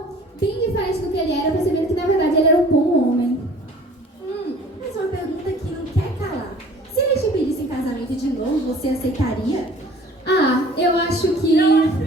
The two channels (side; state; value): both; normal; correlation 0.49